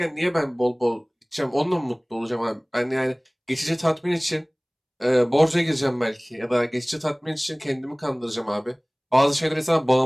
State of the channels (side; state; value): both; identical; correlation 1.00